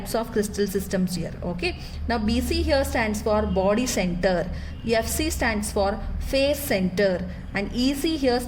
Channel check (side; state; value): both; identical; correlation 1.00